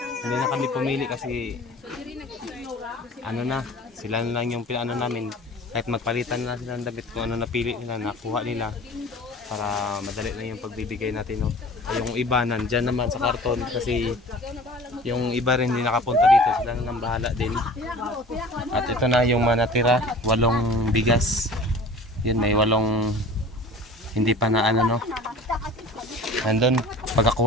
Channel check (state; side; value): normal; both; correlation 0.42